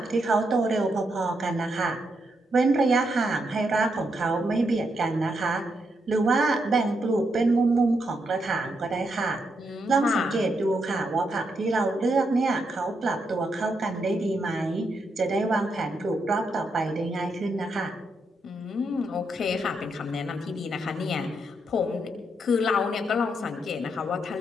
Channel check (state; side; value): normal; both; correlation 0.80